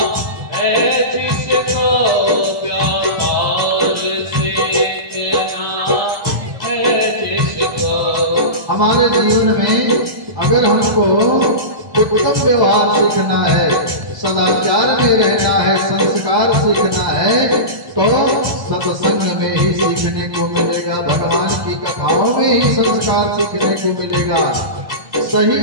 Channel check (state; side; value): late; left; 1.1 ms